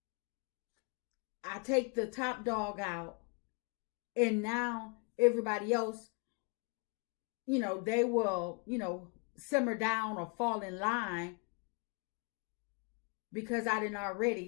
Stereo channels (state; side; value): quieter; right; 33.9 dB